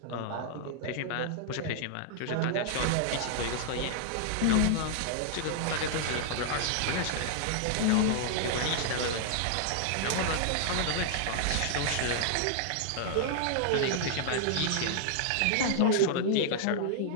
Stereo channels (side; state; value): both; different; correlation -0.01